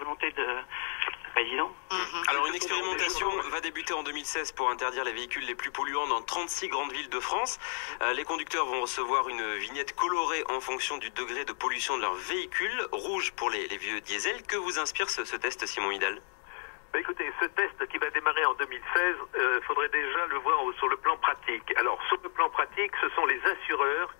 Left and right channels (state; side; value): silent; right; 57 dB below the other